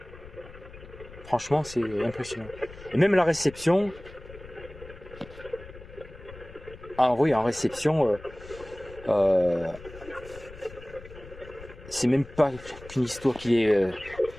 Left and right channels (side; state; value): left; noise; rumble, 17 dB below the sound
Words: Franchement, c'est impressionnant. Et même la réception, oui, en réception, c'est même pas qu'une histoire qui est